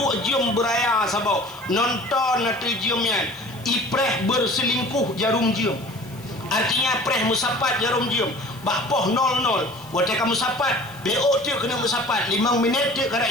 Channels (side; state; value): left; noise; hiss, 22 dB below the sound